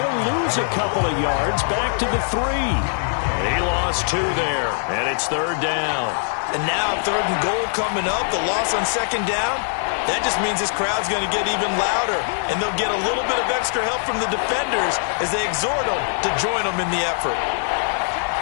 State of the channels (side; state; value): right; silent; 64 dB below the other